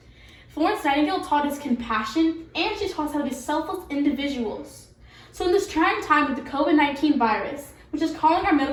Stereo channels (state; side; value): identical; both; correlation 1.00